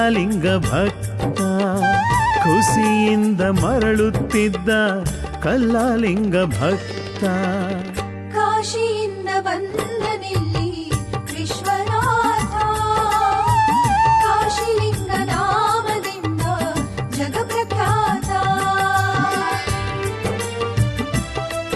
ಭಕ್ತ ಖುಷಿಯಿಂದ ಮರಳುತ್ತಿದ್ದ ಕಲ್ಲಾಲಿಂಗ ಭಕ್ತ ಕಾಶಿಯಿಂದ ಬಂದನಿಲ್ಲಿ ವಿಶ್ವನಾಥ ಕಾಶಿಲಿಂಗ ನಾಮದಿಂದ ಜಗಪ್ರಖ್ಯಾತ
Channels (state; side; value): identical; both; correlation 1.00